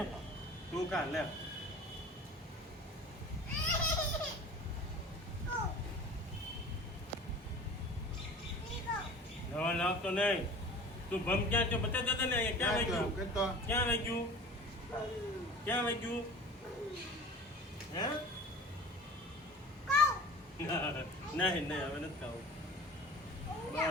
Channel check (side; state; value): both; normal; correlation 0.40